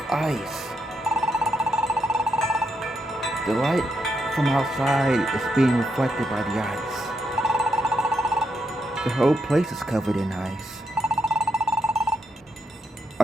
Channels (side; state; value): both; normal; correlation 0.80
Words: ice. The light from outside is being reflected by the ice. The whole place is covered in ice.